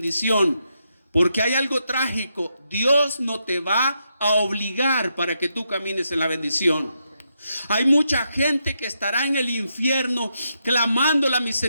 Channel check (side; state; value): both; inverted; correlation -0.82